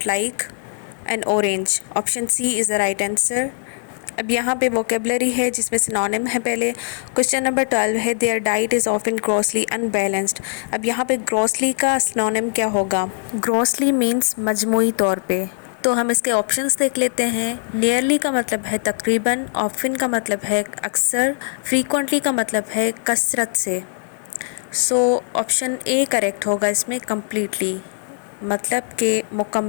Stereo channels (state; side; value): silent; right; 65 dB below the other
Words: like an orange, option C is the right answer. अब यहाँ पे vocabulary है जिसमें synonym है पहले। Question number 12 है their diet is often grossly unbalanced. अब यहाँ पे ग्रॉसली का सिनोनिम क्या होगा? ग्रॉसली मीन्स मजमूई तौर पे। तो हम इसके ऑप्शंस देख लेते हैं। नियरली का मतलब है तकरीबन, ऑफन का मतलब है अक्सर, फ्रीक्वेंटली का मतलब है कसरत से। सो ऑप्शन ए करेक्ट होगा इसमें, कम्प्लीटली मतलब के